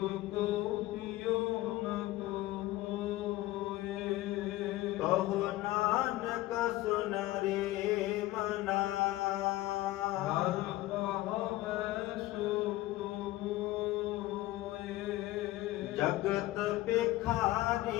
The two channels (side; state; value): right; quieter; 17.1 dB